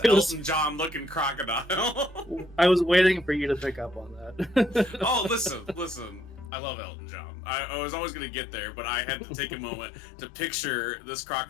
Elton John looking crocodile. I was waiting for you to pick up on that. Oh, listen. I love Elton John. I was always going to get there, but I had to take a moment to picture this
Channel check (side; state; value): right; drops out; at 6.5 s